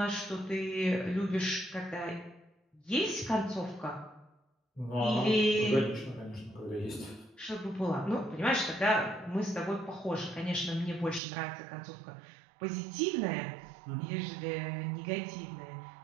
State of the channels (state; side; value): drops out; left; at 11.2 s